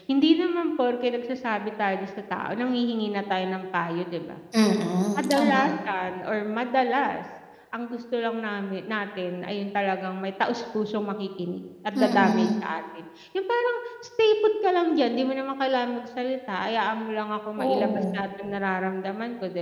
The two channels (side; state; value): both; identical; correlation 1.00